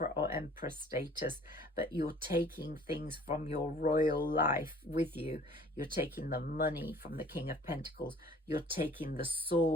or Empress status, but you're taking things from your royal life with you. You're taking the money from the King of Pentacles. You're taking the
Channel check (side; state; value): both; normal; correlation 0.52